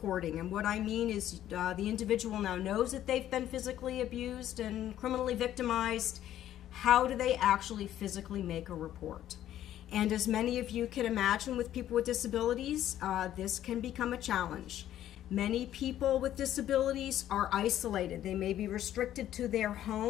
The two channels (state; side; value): quieter; right; 12.1 dB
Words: And what I mean is the individual now knows that they've been physically abused and criminally victimized. How do they actually physically make a report? And as many of you can imagine with people with disabilities, this can become a challenge. Many people with disabilities are isolated. They may be restricted to their